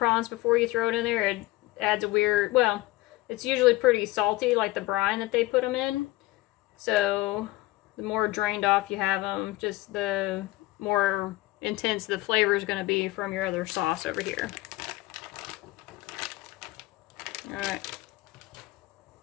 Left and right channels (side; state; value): right; quieter; 18.5 dB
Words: before you throw it in there. It adds a weird, well, it's usually pretty salty, like the brine that they put them in. So the more drained off you have them, just the more intense the flavor is going to be from your other sauce over here. Alright.